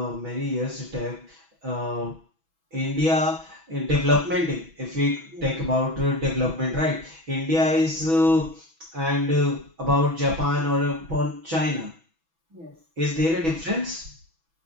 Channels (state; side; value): late; left; 6.1 ms